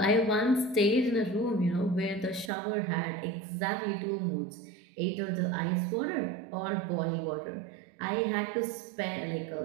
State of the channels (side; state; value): left; drops out; at 2.5 s